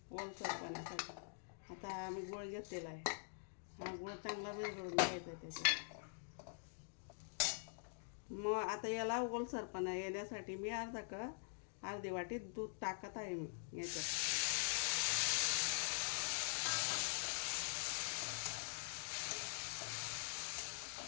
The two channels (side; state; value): right; silent; digital silence